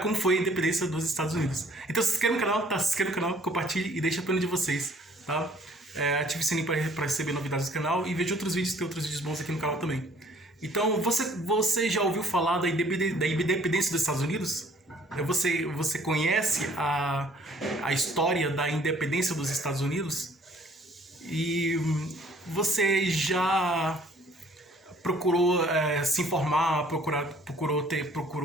como foi a independência dos Estados Unidos. Então, se inscreva no canal, tá? Se inscreva no canal, compartilhe e deixa a opinião de vocês, tá? Ative o sininho para receber novidades do canal e veja outros vídeos, tem outros vídeos bons aqui no canal também. Então, você já ouviu falar da independência dos Estados Unidos? Você conhece a história da independência dos Estados Unidos? E você já procurou se informar,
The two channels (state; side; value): normal; both; correlation 0.57